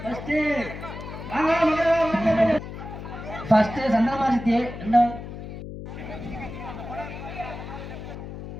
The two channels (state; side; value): noise; left; hum, 10 dB below the sound